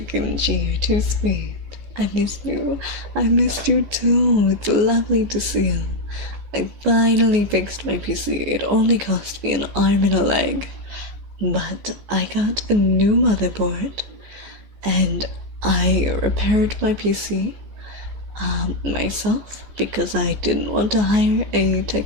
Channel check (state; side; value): late; left; 14 ms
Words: Kimchi, you're too sweet. I missed you. I missed you too. It's lovely to see you. I finally fixed my PC. It only cost me an arm and a leg. But I got a new motherboard. And I repaired my PC myself because I didn't want to hire a